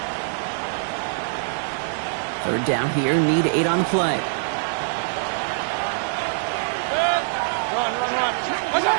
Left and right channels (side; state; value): left; silent; digital silence